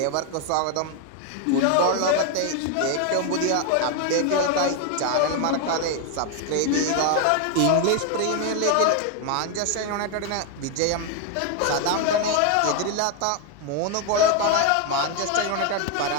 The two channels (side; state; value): both; different; correlation 0.01